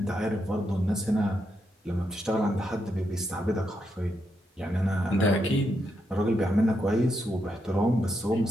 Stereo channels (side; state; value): both; normal; correlation 0.82